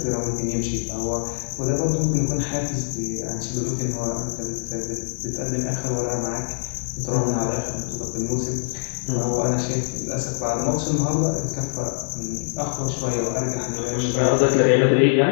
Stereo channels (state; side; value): silent; right; digital silence